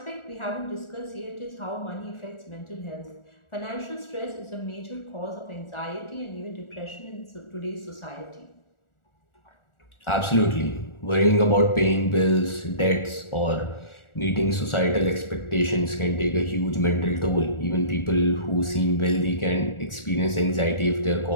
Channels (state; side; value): late; right; 1.4 ms